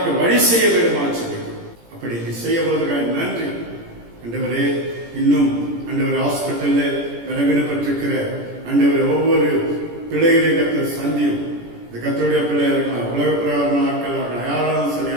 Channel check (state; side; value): late; left; 17 ms